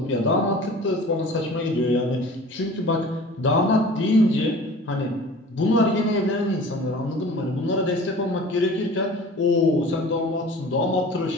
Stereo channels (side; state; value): both; normal; correlation 0.43